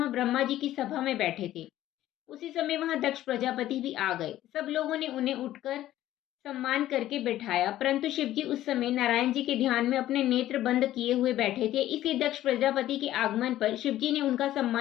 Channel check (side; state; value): right; quieter; 13.8 dB